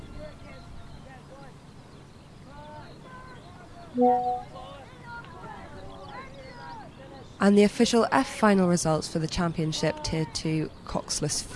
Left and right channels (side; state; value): both; identical; correlation 1.00